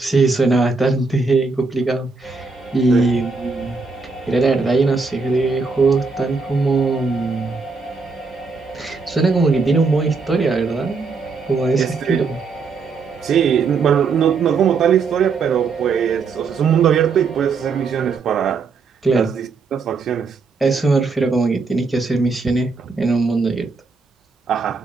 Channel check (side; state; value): left; quieter; 4.5 dB